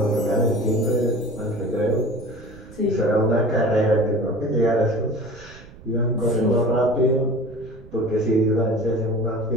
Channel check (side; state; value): right; noise; rumble, 20 dB below the sound